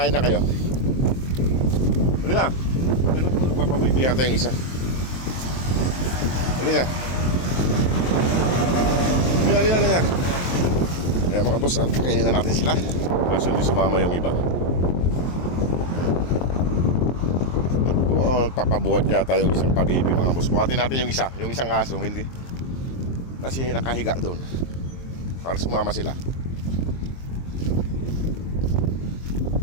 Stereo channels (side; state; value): right; late; 23 ms